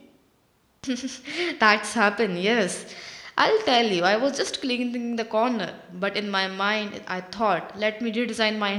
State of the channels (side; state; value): both; identical; correlation 1.00